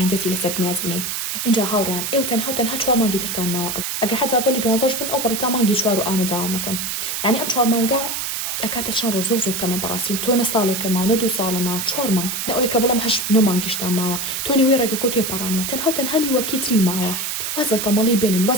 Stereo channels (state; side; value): noise; right; hiss, 3 dB below the sound